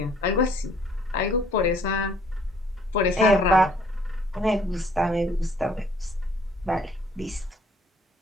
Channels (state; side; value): normal; both; correlation 0.61